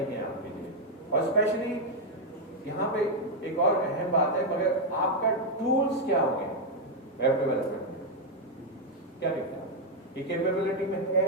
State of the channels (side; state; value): both; normal; correlation 0.01